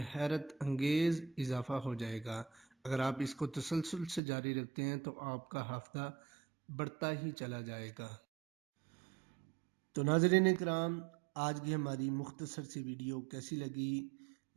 حیرت انگیز اضافہ ہو جائے گا۔ اگر آپ اس کو تسلسل سے جاری رکھتے ہیں تو آپ کا حافظہ بڑھتا ہی چلا جائے گا۔ تو ناظرین اکرام، آج کی ہماری مختصر سی ویڈیو کیسی لگی؟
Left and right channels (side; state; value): left; drops out; at 4.2 s